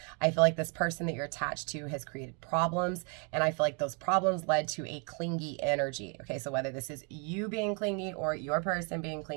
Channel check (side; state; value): left; quieter; 36.9 dB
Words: I feel like this person that you're attached to has created problems, and I feel like those problems led to a clingy energy. Okay, so whether this is you being clingy or your person being